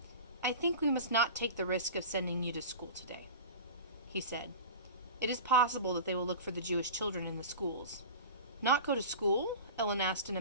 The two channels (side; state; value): both; inverted; correlation -0.33